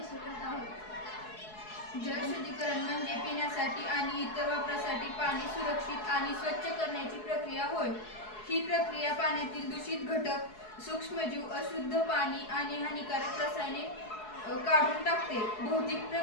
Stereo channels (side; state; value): right; late; 4.7 ms